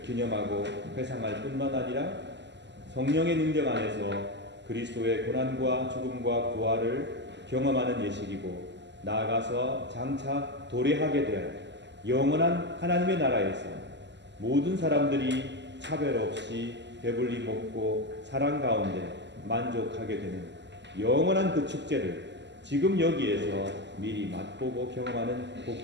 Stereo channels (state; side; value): late; left; 0.51 ms